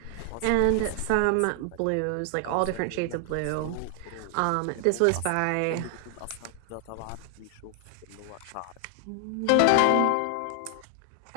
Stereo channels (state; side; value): different; both; correlation 0.00